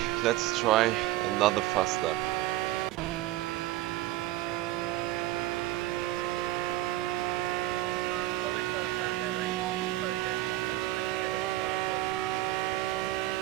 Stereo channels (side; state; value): left; quieter; 16.0 dB